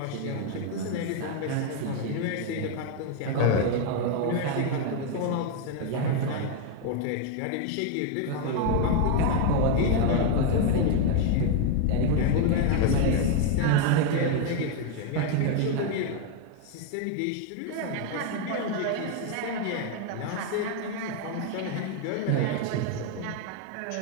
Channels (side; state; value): both; different; correlation 0.01